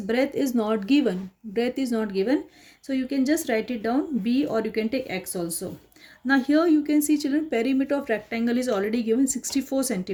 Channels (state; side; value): identical; both; correlation 1.00